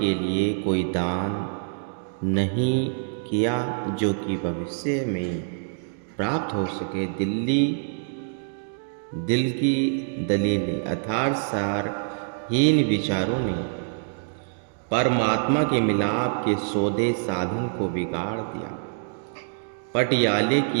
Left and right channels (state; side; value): silent; left; digital silence